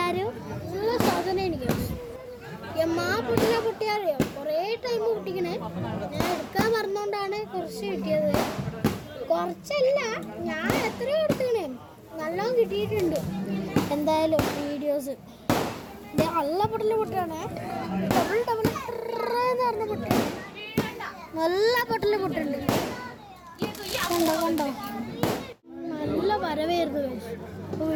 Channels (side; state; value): both; identical; correlation 1.00